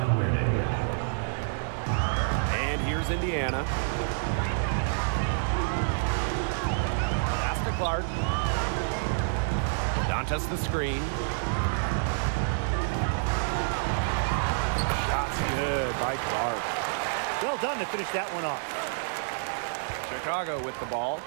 And here's Indiana. Pass to Clark. Dantas the screen. Shot's good by Clark. Well done to finish that one off. Chicago with the ball.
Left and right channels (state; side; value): silent; left; digital silence